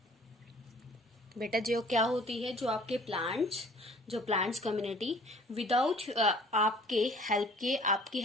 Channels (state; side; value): normal; both; correlation 0.52